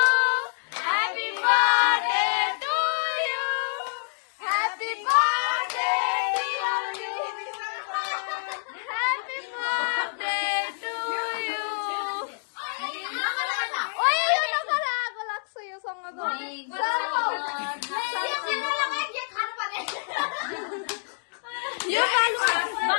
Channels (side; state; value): right; silent; digital silence